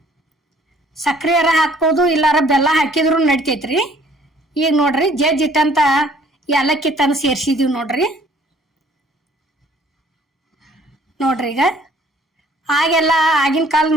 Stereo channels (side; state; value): both; normal; correlation 0.58